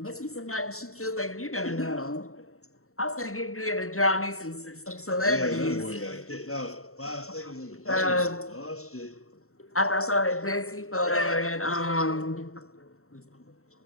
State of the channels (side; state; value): right; late; 0.63 ms